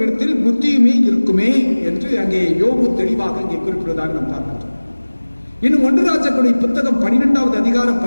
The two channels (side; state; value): both; inverted; correlation -1.00